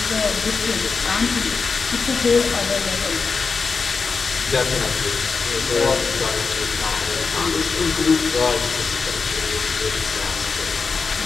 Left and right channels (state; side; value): quieter; right; 4.8 dB